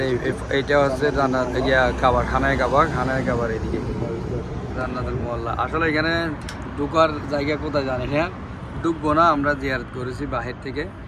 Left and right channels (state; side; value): identical; both; correlation 1.00